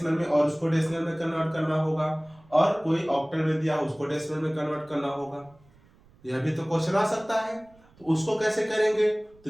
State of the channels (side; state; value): right; noise; rumble, 29 dB below the sound